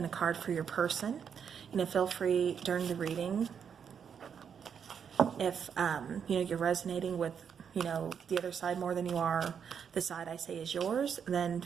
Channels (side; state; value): left; quieter; 7.4 dB